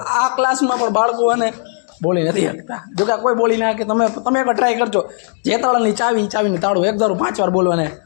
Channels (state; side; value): silent; right; 58 dB below the other